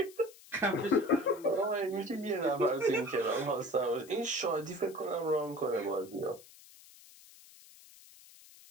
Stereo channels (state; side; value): noise; left; hiss, 22 dB below the sound